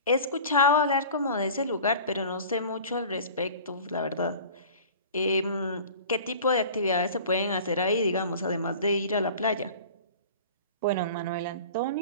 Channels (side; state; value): both; inverted; correlation -0.41